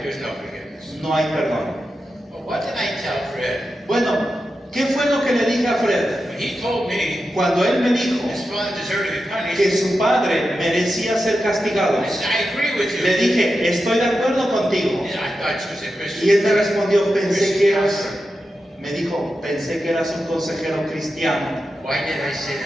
there's no forgiveness. no hay perdón. Well, what did I tell Fred? Bueno, ¿qué fue lo que le dije a Fred? When he told me Cuando él me dijo his father deserved to be punished, que su padre merecía ser castigado, I said, I agree with you. le dije, estoy de acuerdo contigo. And I thought you was a Christian. Y él me respondió, pensé que eras, counselor. me dijo, pensé que eras un consejero cristiano. Why did I say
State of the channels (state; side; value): normal; both; correlation 0.90